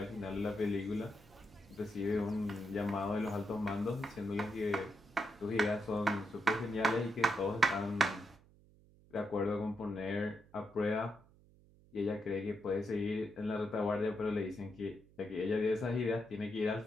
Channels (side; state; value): right; noise; hum, 26 dB below the sound